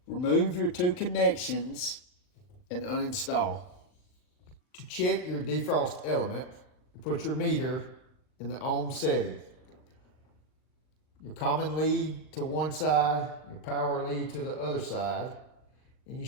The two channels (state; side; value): late; right; 39 ms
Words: Remove your two connections and uninstall. To check your defrost element, put your meter in the ohm setting. Your common lead to one side, your power lead to the other side, and you